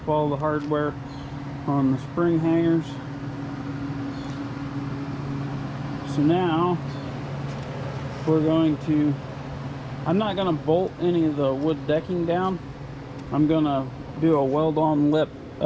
all the hardware on the spring hangers. So now we're going to, I'm not going to bolt any of the wood decking down. I'm going to do a weld-on lip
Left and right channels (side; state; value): both; identical; correlation 1.00